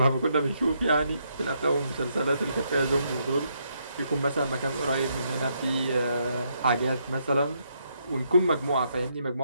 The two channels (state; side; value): inverted; both; correlation -0.76